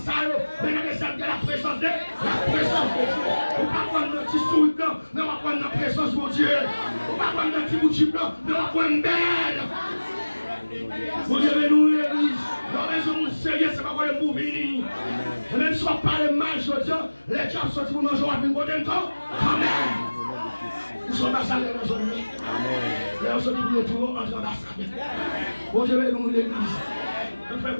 mais dans les scènes de la présence de Dieu. On va prendre un petit souris blanc, mais on va prendre la présence de Dieu. On va prendre un petit boutique blanc, mais on va prendre une belle. Vous devez nous l'église. La raison de sérieux, c'est pas pour les mouvements. Même si on parle mal, je dis, les gens sont pour manger avec une bonne temps. Amen. Nous sommes ambassadeurs dans notre vie. Là, on se dit pour les tours, on est ambassadeurs. Vous devez nous l'église. Fais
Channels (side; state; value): both; inverted; correlation -1.00